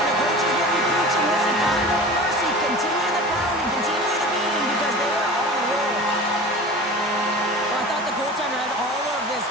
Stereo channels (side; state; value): both; normal; correlation 0.36